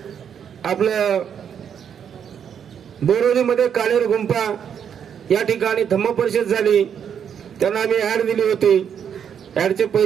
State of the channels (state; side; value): quieter; left; 8.1 dB